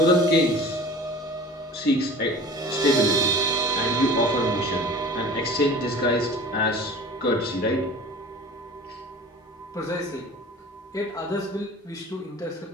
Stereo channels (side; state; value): both; normal; correlation 0.41